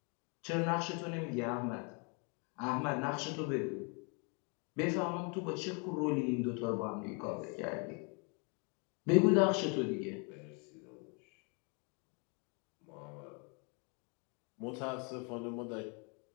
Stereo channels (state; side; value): quieter; right; 35.2 dB